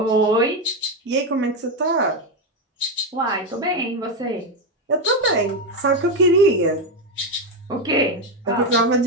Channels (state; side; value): normal; both; correlation 0.09